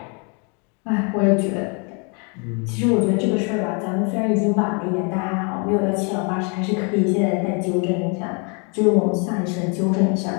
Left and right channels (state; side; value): quieter; right; 35.1 dB